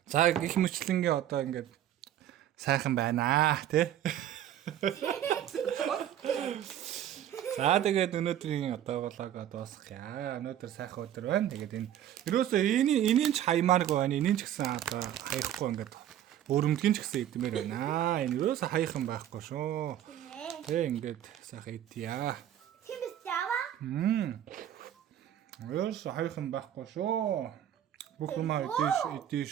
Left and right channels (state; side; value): quieter; left; 11.2 dB